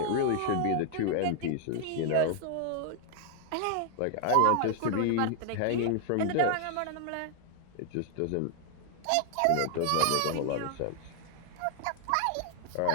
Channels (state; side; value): different; both; correlation 0.00